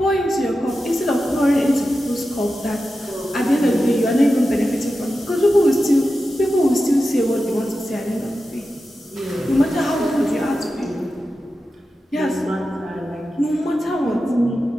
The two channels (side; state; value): both; normal; correlation 0.92